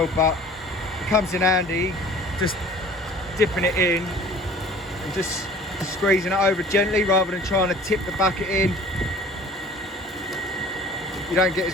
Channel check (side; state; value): both; normal; correlation 0.48